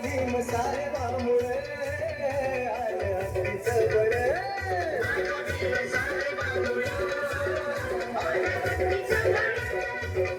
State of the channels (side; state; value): both; identical; correlation 1.00